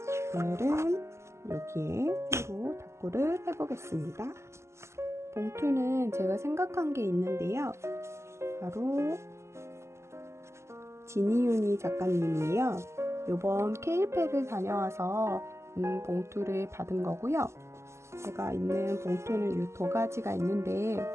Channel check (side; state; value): left; late; 0.13 ms